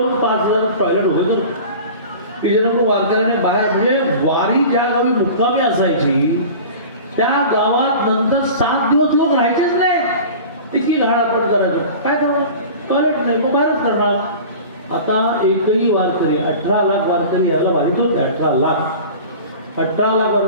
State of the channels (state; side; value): inverted; both; correlation -0.38